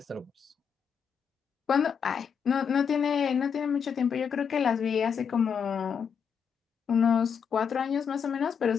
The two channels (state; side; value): quieter; right; 6.9 dB